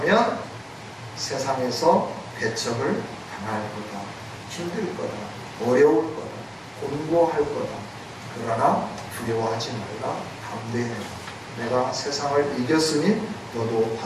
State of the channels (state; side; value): identical; both; correlation 1.00